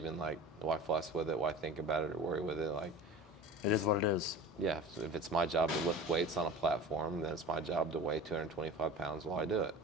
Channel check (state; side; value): normal; both; correlation 0.37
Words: why fuss with it? Why think about it or worry with it? Like, It is what it is. yeah, if it's my job to lift weights on a platform, then it's my job to weigh 225 pounds while I do it.